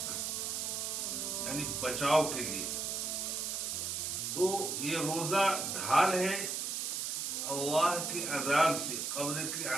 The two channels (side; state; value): right; noise; hiss, 2 dB below the sound